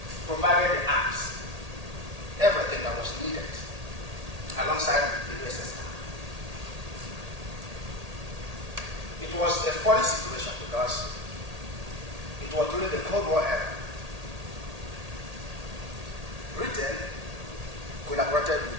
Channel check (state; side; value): late; left; 1.8 ms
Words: provided the arms, everything that was needed, alongside the USSR. It was a funny situation because it was during the Cold War era. Britain collaborated